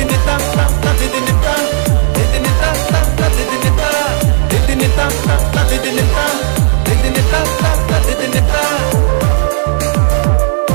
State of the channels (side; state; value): left; silent; digital silence